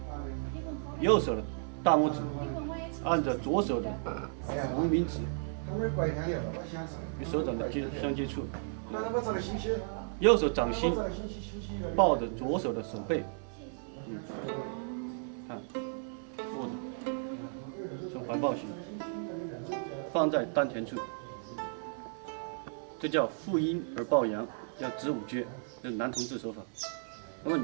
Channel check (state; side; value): silent; left; digital silence